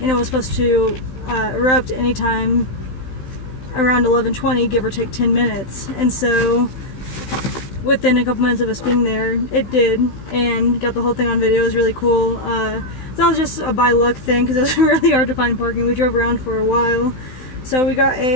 and it was supposed to erupt anytime around 11:20, give or take 10 minutes. And so within a couple minutes of us being there, it did, and got the whole thing on video. It was really cool. So that was just a by luck thing because it was really hard to find parking. We drove around for a while. So we got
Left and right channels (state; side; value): late; right; 16 ms